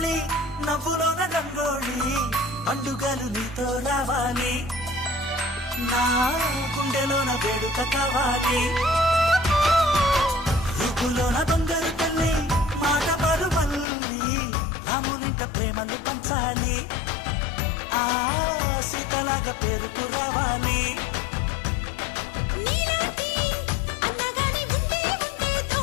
తల్లి నవ్వులోన రంగోళి పండుగలు నీతో రావాలి నా గుండెలోన వేడుక కావాలి రూపులోన బంగారు తల్లి మాట పరు మల్లి రామునింట ప్రేమలు పంచాలి ఆ సీతలాగా పేరుకు రావాలి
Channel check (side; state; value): right; drops out; at 13.9 s